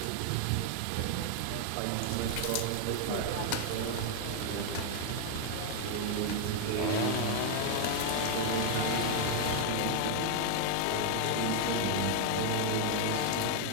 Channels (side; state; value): both; different; correlation 0.00